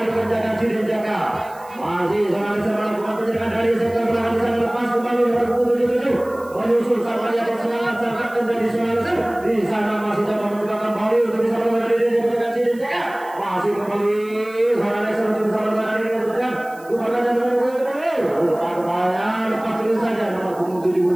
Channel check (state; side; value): noise; right; hiss, 25 dB below the sound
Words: penjagaan si Ninjaka. Masih seorang Lexer melakukan penjagaan dari sektor belakang di sana lepas kembali nomor punggung 77. Menyusul sang penjaga serangan sang kapten dari seorang Lexer. Di sana masih coba mencoba kembali untuk bisa menemukan diri dari penjagaan si Ninjaka. Masih kembali seorang Lexer untuk bisa menemukan diri dari penjagaan. Rupanya nomor punggung 77. Rupanya lepas dulu saja nomor punggung